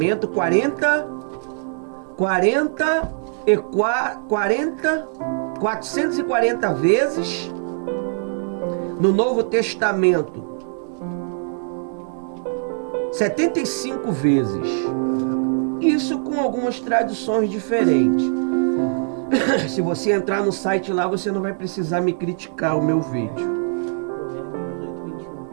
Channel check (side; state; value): left; silent; digital silence